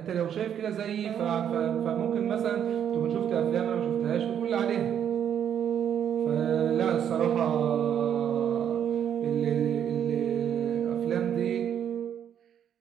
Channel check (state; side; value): quieter; left; 9.1 dB